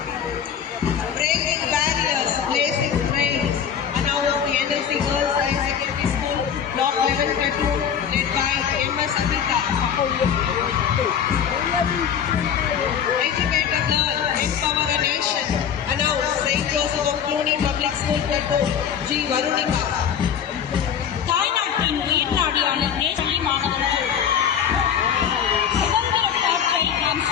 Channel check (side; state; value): right; quieter; 8.2 dB